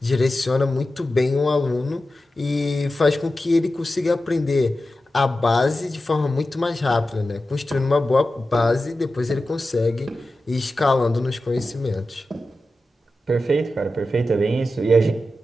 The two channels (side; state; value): both; normal; correlation 0.93